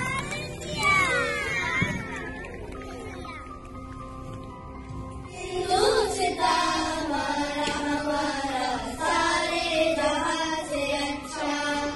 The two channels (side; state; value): both; identical; correlation 1.00